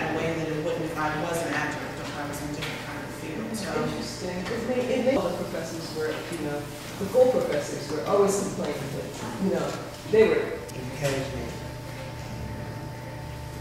in a way that it wouldn't if I was an adjunct or if I was in a different kind of field. So. Interesting. It made all the professors were, you know, the full professors were always complaining that, you know, they were. Encouragement.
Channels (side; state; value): both; identical; correlation 1.00